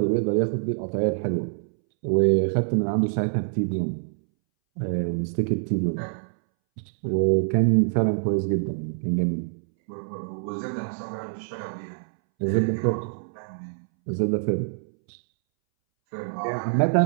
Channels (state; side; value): silent; left; 61 dB below the other